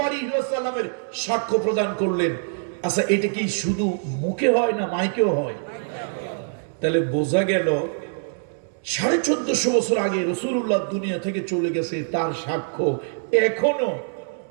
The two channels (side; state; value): left; silent; 63 dB below the other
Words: আলাইহি ওয়াসাল্লামের সাক্ষ্য প্রদান করলেন। আচ্ছা, এটা কি শুধু মুখে হয় না মাইকেও হয়? তাহলে বোঝা গেল 1450 বছর আগে রাসূলুল্লাহ দুনিয়া থেকে চলে গেছে, তার সাক্ষ্য এখনো